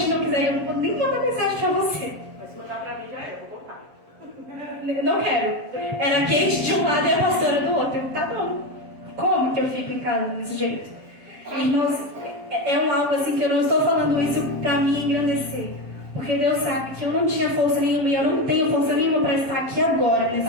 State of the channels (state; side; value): late; left; 7.0 ms